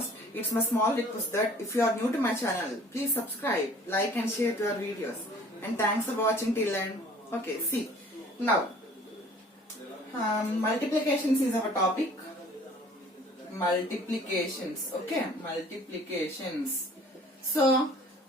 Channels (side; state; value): both; normal; correlation 0.52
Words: it's my small request that if you are new to my channel, please subscribe, like and share to our videos, and thanks for watching till end. Okay, see now multiplications is our topic. Multiplications, okay, multiplications. So